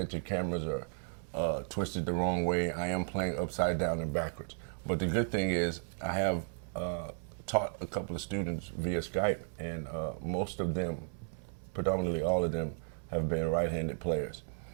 your cameras are twisted the wrong way. I am playing upside down and backwards. But the good thing is I have taught a couple of students via Skype, and most of them, predominantly all of them, have been right-handed players.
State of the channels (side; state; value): left; silent; 55 dB below the other